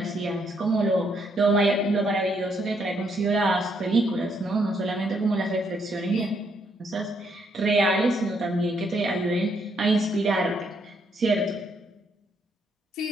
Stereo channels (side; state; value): both; normal; correlation 0.74